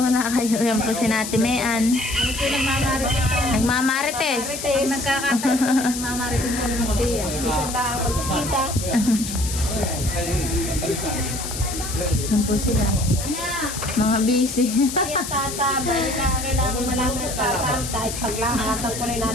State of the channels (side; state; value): left; noise; hiss, 7 dB below the sound